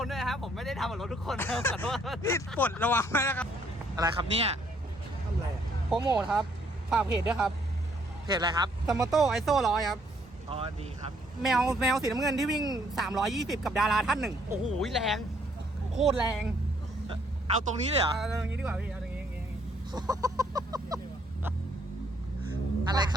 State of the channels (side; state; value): both; normal; correlation 0.67